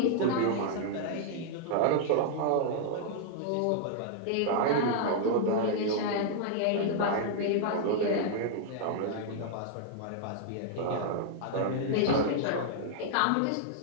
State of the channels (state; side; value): different; both; correlation -0.01